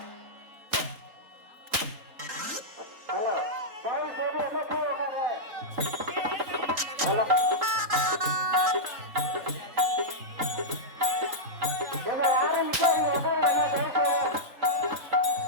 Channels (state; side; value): late; left; 3.8 ms